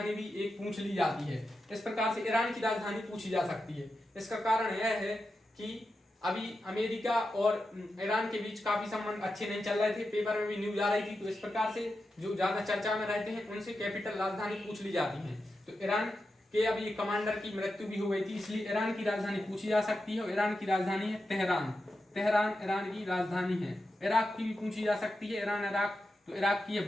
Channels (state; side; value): normal; both; correlation 0.89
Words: भी एक पूछ ली जाती है। इस प्रकार से ईरान की राजधानी पूछी जा सकती है। इसका कारण यह है कि अभी अमेरिका और ईरान के बीच काफी संबंध अच्छे नहीं चल रहे थे, पेपर में भी न्यूज आ रही थी, तो इस प्रकार से जो ज्यादा चर्चा में रहते हैं उनसे कैपिटल राजधानी पूछ ली जाती है। तो ईरान के अभी कमांडर की मृत्यु भी हो गई थी, इसलिए ईरान की राजधानी पूछी जा सकती है, और ईरान की राजधानी है तेहरान ईरान की राजधानी है। इराक की भी पूछी जा सकती है, ईरान इराक, तो इराक की है